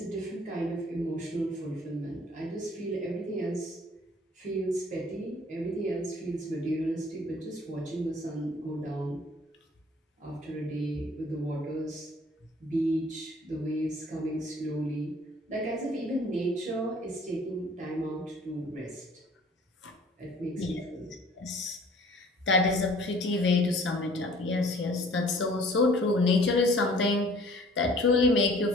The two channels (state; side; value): normal; both; correlation 0.53